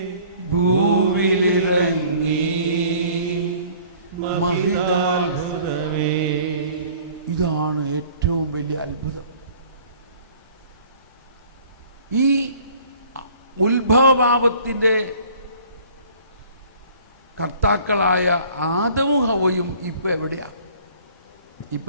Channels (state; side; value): inverted; both; correlation -0.52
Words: ഭൂവിലിറങ്ങി മഹിതാത്ഭുതമേ. ഇതാണ് ഏറ്റവും വലിയ അത്ഭുതം. ഈ ഉത്ഭവപാപത്തിന്റെ കർത്താക്കളായ ആദമും ഹവ്വയും ഇപ്പൊ എവിടെയാ?